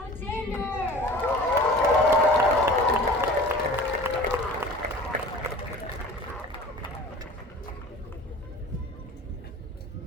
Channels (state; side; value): normal; both; correlation 0.42